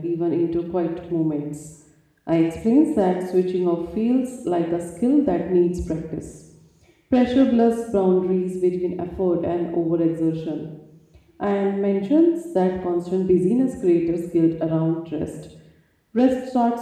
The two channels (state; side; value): identical; both; correlation 1.00